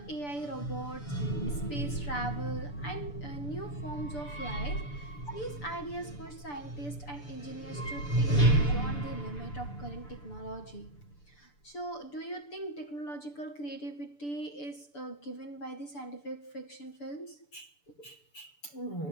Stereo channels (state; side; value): late; right; 6.9 ms